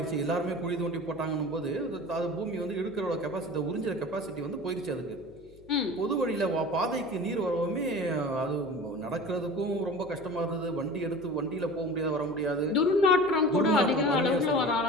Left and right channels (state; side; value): noise; left; hum, 25 dB below the sound